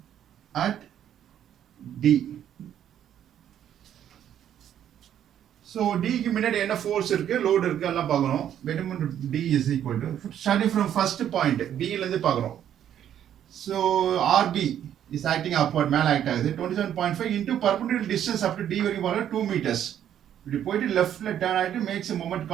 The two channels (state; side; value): quieter; left; 10.2 dB